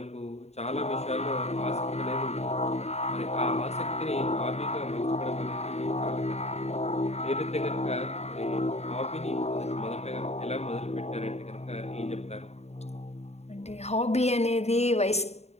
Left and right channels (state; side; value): late; right; 0.31 ms